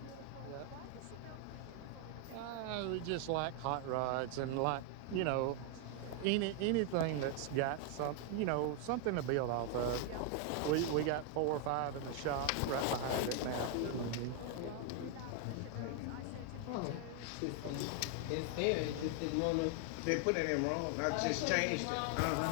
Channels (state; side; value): different; both; correlation 0.00